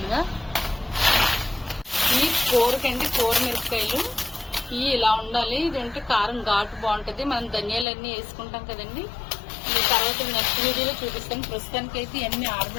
ఈ కూరకండి, కూర మిరపకాయలు ఇవి ఇలా ఉండాలి. ఇదంటే కారం ఘాటు బాగుంటుంది. మనం ధనియాలన్నీ వేసుకుంటాం కదండి. ఈ తర్వాత నెక్స్ట్ వీడియోలో చూపిస్తాను. ప్రస్తుతానికి అయితే ఇవన్నీ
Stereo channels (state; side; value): drops out; right; at 7.9 s